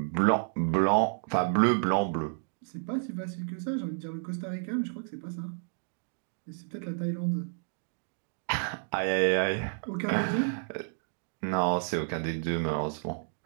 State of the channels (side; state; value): left; silent; digital silence